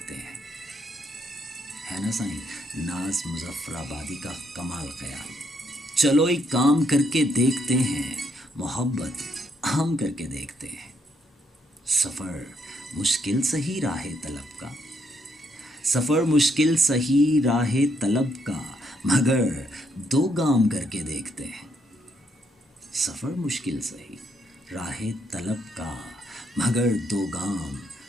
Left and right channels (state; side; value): normal; both; correlation 0.75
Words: हैं। है ना साईं नाज मुजफ्फराबादी का कमाल ख्याल। चलो एक काम करके देखते हैं, मोहब्बत हम करके देखते हैं। सफ़र मुश्किल सही राहे तलब का, सफ़र मुश्किल सही राहे तलब का, मगर दो गाम करके देखते हैं। सफ़र मुश्किल सही राहे तलब का, मगर दो गाम